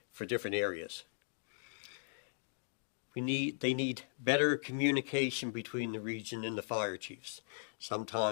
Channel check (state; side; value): silent; right; digital silence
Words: for different areas. They need better communication between the region and the fire chiefs.